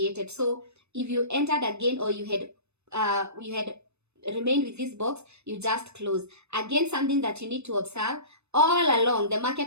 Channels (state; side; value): late; left; 0.81 ms